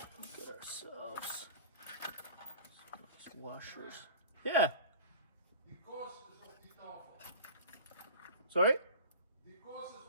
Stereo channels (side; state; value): both; inverted; correlation -0.39